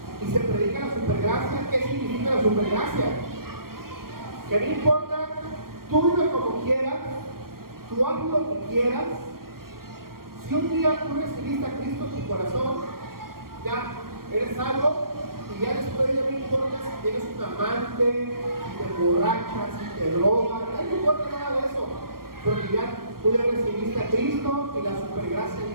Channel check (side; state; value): left; late; 0.93 ms